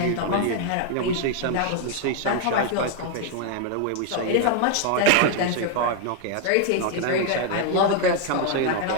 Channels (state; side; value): different; both; correlation 0.00